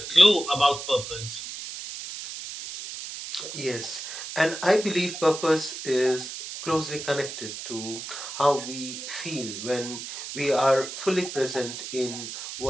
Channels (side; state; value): right; noise; hiss, 8 dB below the sound